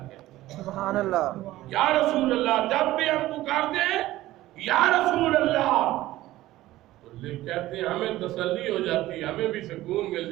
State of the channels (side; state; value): left; quieter; 16.1 dB